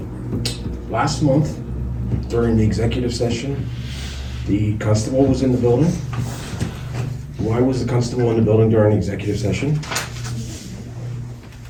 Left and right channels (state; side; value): identical; both; correlation 1.00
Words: Last month, during the executive session, the constable was in the building. Why was the constable in the building during the executive session?